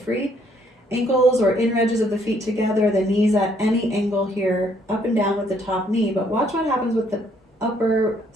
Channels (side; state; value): both; normal; correlation 0.67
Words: Ankles or inner edges of the feet together, the knees at any angle here, up and down with the top knee, but watch what happens with the upper